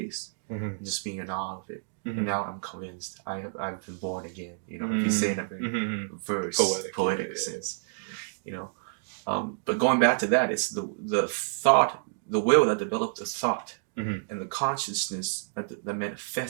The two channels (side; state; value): left; silent; digital silence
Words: and just being in awe of it. And now I'm convinced I've been born again. You know, if you say in a very poetic sense, you know. But going back to that, it's the thought, the will that developed the thought, and the consciousness that